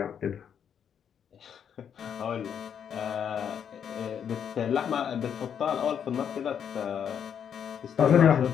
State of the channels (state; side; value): quieter; right; 8.2 dB